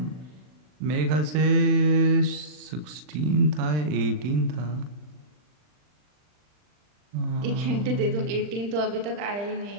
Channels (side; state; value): left; late; 40 ms